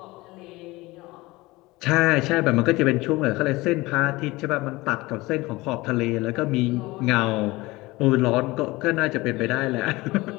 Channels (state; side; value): quieter; right; 21.0 dB